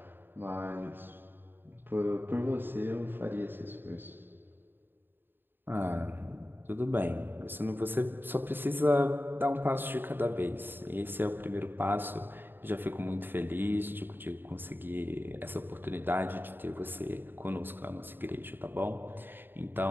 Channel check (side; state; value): left; late; 0.097 ms